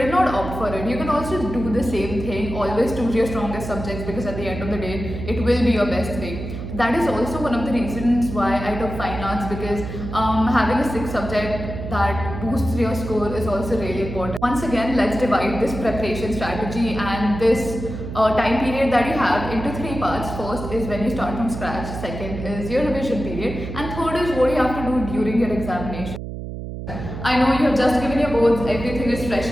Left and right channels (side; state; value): right; noise; hum, 8 dB below the sound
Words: not opt for it. You can also do the same thing. Always choose your strongest subjects, because at the end of the day, it will be your best 3. That is also one of the reasons why I took fine arts, because having a 6th subject that boosts your score is also really important. Once again, let's divide this preparation strategy and this time period that you have into 3 parts. First is when you start from scratch, second is your revision period, and third is what you have to do during your examination. I know you have just given your boards, everything is fresh